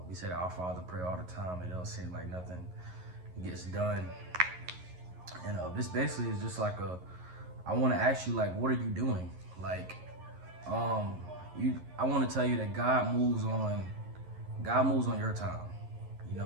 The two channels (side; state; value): left; late; 11 ms